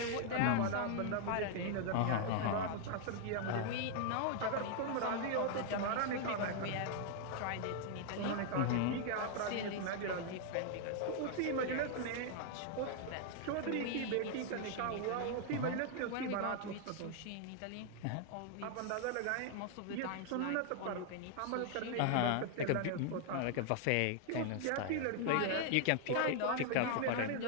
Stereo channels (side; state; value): both; different; correlation 0.00